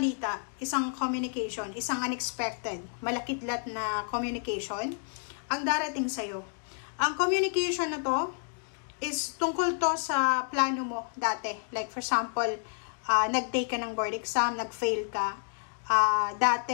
isang communication, isang unexpected, malakidlat na communication ang darating sa'yo. Ang communication na to is tungkol to sa plano mo dati. Like for example, nag-take ka ng board exam, nag-fail ka.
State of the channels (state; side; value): silent; right; 58 dB below the other